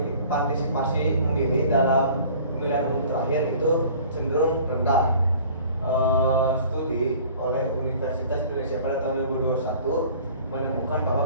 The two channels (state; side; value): inverted; both; correlation -0.48